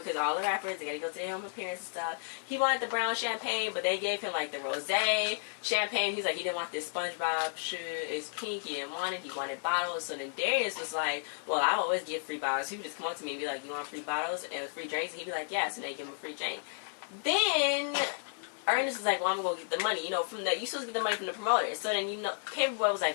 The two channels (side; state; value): right; silent; 56 dB below the other